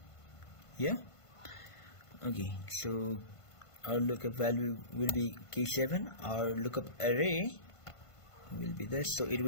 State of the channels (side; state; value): right; late; 1.5 ms